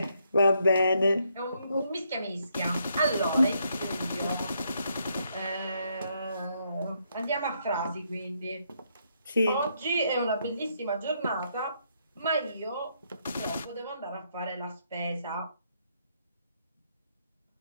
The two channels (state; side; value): inverted; both; correlation -0.75